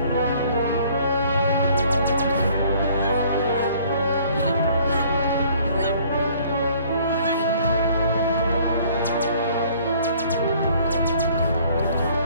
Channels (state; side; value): inverted; both; correlation -0.57